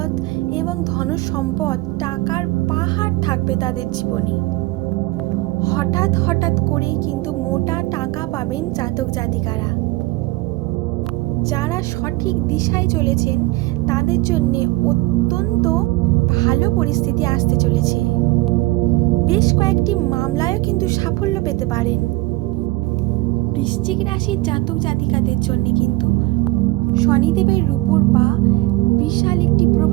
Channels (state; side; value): quieter; left; 20.5 dB